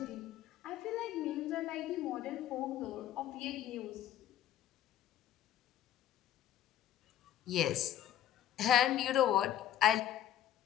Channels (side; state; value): right; quieter; 11.5 dB